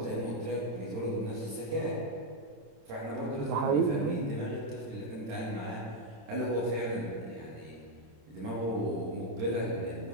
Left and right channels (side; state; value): left; late; 26 ms